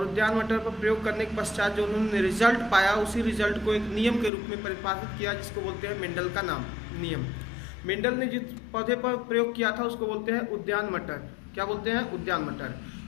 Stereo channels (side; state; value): right; drops out; at 4.3 s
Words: उद्यान मटर पर प्रयोग करने के पश्चात जो उन्होंने रिजल्ट पाया, उसी रिजल्ट को एक नियम के रूप में परिभाषित किया, जिसको बोलते हैं मेंडल का नाम नियम। मेंडल ने जिस पौधे पर प्रयोग किया था उसको बोलते हैं उद्यान मटर। क्या बोलते हैं? उद्यान मटर।